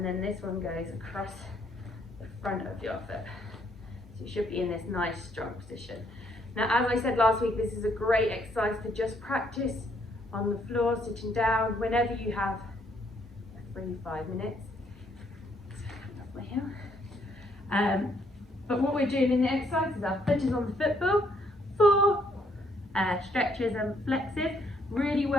then this one goes across the front of your foot. So you should be in this nice strong position. Now, as I said last week, this is a great exercise to just practice on the floor, sitting down, whenever you have a free 5 minutes. But what we're doing in the exercise is our foot is on the football, 4 stretches and flexes, really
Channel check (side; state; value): both; normal; correlation 0.70